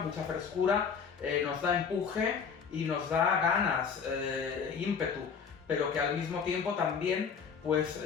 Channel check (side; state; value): right; quieter; 6.2 dB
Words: frescura, nos da empuje y nos da ganas, ímpetu, pero que al mismo tiempo también pues